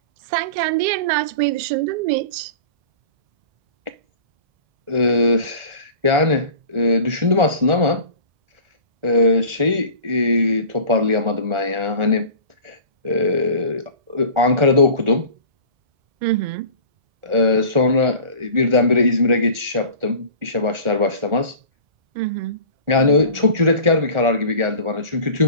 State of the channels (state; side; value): late; left; 1.4 ms